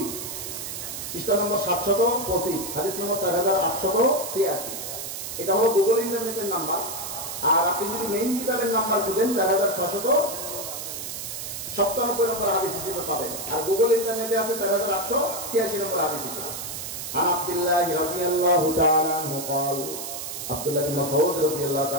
পৃষ্ঠা নম্বর 725, হাদিস নম্বর 4886। এটা হলো গুগল ইন্টারনেটের নাম্বার। আর আপনি যদি মেইন কিতাবের নাম্বার খুঁজেন 4697 নম্বর হাদিস হিসেবে পাবেন। আর গুগল ইন্টারনেটে আছে 4886 নম্বর হাদিস হিসেবে। আন আব্দুল্লাহ রাদিয়াল্লাহু তাআলা আনহু قال, আব্দুল্লাহ বিন মাসউদ রাদিয়াল্লাহু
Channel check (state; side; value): noise; right; hiss, 7 dB below the sound